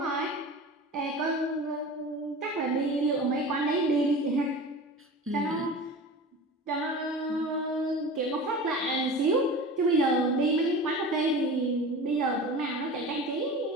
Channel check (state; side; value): normal; both; correlation 0.34